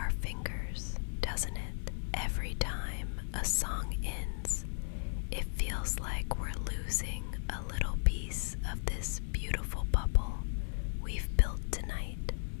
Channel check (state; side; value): silent; right; digital silence